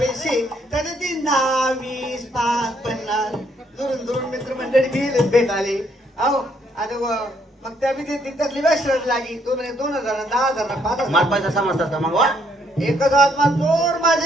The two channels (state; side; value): normal; both; correlation 0.70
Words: त्याने 3, 10, 20, 5, 50 दुरून दुरून मित्र मंडळी गेले भेटाले अहो आणि मग त्या बी त्यातली आशीर्वाद लागी 2000, 10,000, 5,000 मार पैसा समजतात का मग वा एकच आत्मा चोर